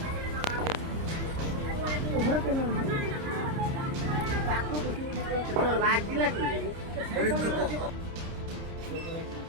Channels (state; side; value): late; left; 30 ms